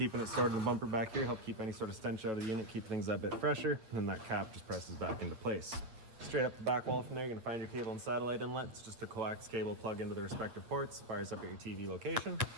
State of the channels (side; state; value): left; late; 8.5 ms